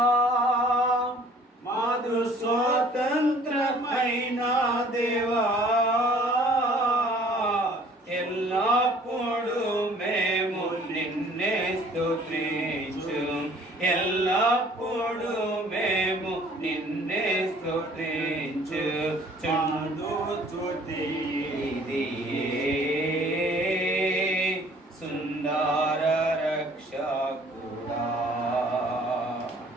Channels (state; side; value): normal; both; correlation 0.54